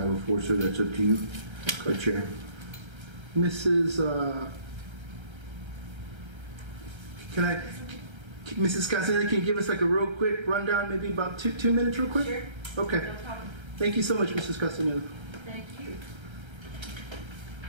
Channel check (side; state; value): left; late; 1.3 ms